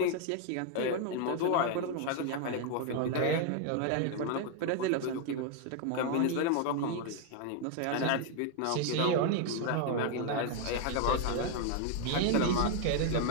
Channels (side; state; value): both; different; correlation 0.01